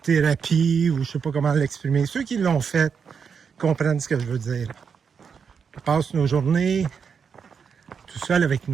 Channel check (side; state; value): left; quieter; 6.4 dB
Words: thérapie, ou je sais pas comment l'exprimer. Ceux qui l'ont fait comprennent ce que je veux dire. On passe nos journées tout seul avec